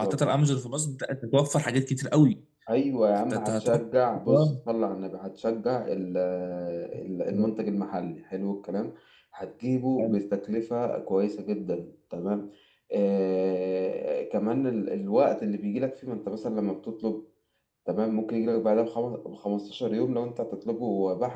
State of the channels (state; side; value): identical; both; correlation 1.00